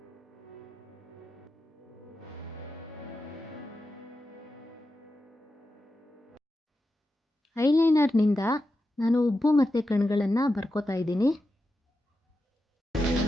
ಐಲೈನರ್ನಿಂದ ನಾನು ಉಬ್ಬು ಮತ್ತು ಕಣ್ಗಳನ್ನು ಬರ್ಕೋತಾ ಇದ್ದೀನಿ.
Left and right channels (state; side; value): normal; both; correlation 0.90